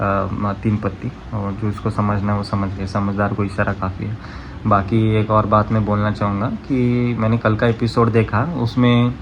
3 पत्ती। और जो उसको समझना है वो समझ गए, समझदार को इशारा काफ़ी है। बाकी एक और बात मैं बोलना चाहूँगा कि मैंने कल का एपिसोड देखा, उसमें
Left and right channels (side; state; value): both; identical; correlation 1.00